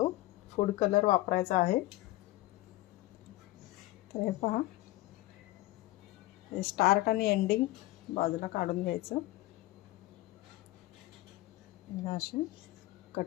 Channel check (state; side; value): quieter; right; 18.2 dB